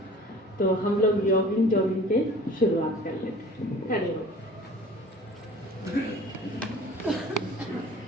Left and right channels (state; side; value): normal; both; correlation 0.45